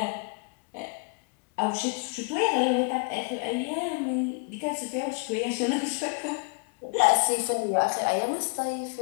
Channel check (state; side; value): quieter; right; 34.5 dB